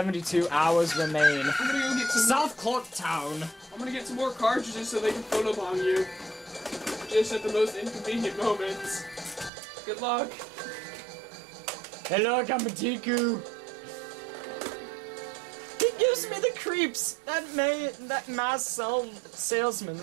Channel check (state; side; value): drops out; left; at 9.5 s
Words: hours remain. I'm gonna go get some South Clark Town. I'm gonna get some more cartridges so they can photobomb you. Just at the most inconvenient moments. Good luck. Hey look, I'm a Deku. He gives me the creeps. That mass salesman.